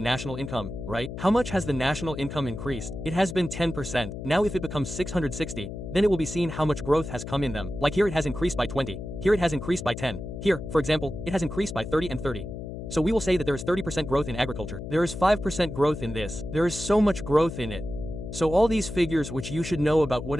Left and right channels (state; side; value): noise; left; hum, 8 dB below the sound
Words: national income, right? How much has the national income increased? It has been 10%. Now if it becomes 660, then it will be seen how much growth has come in them. Like here it has increased by 20, here it has increased by 10, here, for example, it has increased by 30 and 30. So we will say that there is 30% growth in agriculture. There is 5% growth in this. There is so much growth in it. So all these figures which you should know about